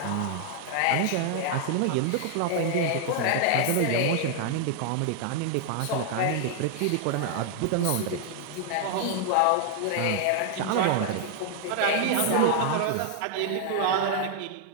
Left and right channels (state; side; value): different; both; correlation 0.00